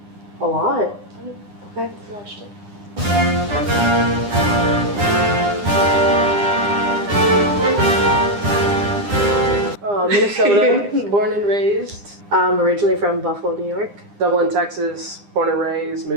a lot. Okay. I watched it. Minnesota, born and raised. Originally from Buffalo, New York. Dublin, Texas, born and raised,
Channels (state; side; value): late; left; 9.9 ms